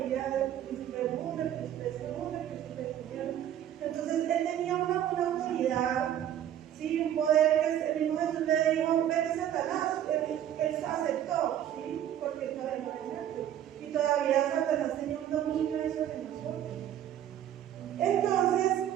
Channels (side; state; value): left; quieter; 10.9 dB